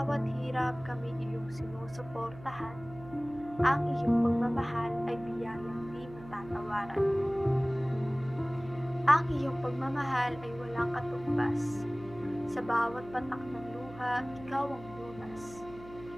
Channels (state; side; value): noise; right; hum, 17 dB below the sound